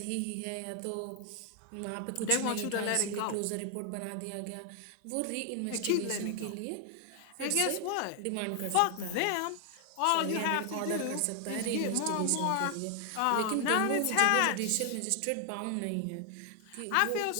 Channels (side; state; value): both; different; correlation 0.00